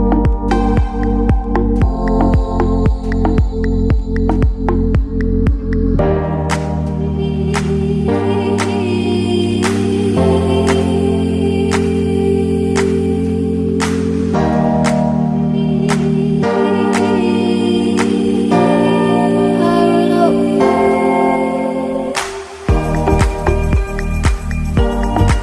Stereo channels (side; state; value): both; identical; correlation 1.00